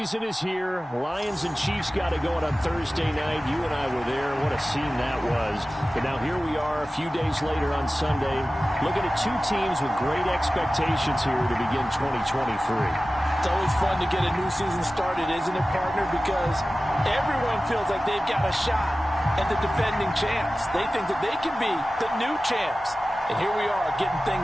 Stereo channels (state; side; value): normal; both; correlation 0.96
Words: is here. Lions and Chiefs got it going on Thursday night. You and I were there. What a scene that was. But now here we are a few days later on Sunday, looking at two teams with great expectations here to begin 2023. It's always fun to get a new season started, isn't it, partner? Because everyone feels like they've got a shot at the defending champs. They think that they can be the new champs. And here we are getting